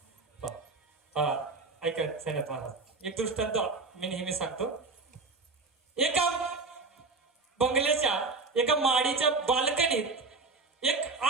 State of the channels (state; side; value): quieter; left; 3.9 dB